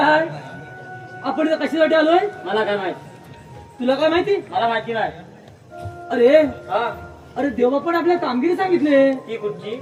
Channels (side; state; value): both; identical; correlation 1.00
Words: आपण इथं कशासाठी आलोय मला काय माहित तुला काय माहिती मला माहिती नाही अरे हा अरे देवा पण आपल्या कामगिरी सांगितले ती कुठची